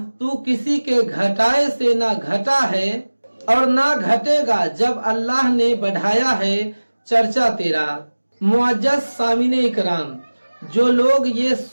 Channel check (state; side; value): inverted; both; correlation -1.00